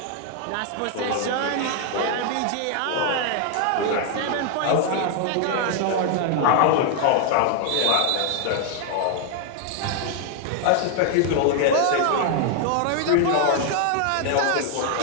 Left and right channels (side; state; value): both; different; correlation 0.00